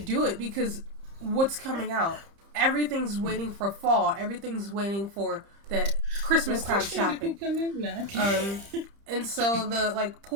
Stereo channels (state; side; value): late; left; 30 ms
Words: it, because what's coming out? Everything's waiting for fall. Everything's waiting for that Christmas time shopping. And so the like